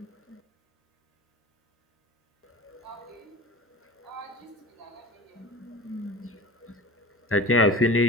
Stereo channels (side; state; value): both; normal; correlation 0.35